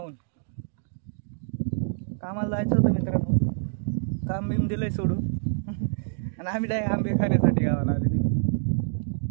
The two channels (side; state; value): left; silent; digital silence